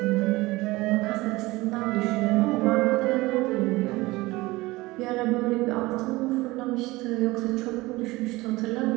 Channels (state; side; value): quieter; left; 20.5 dB